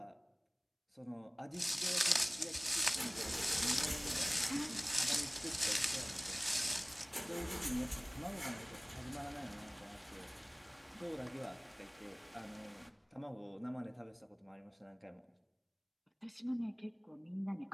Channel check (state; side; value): identical; both; correlation 1.00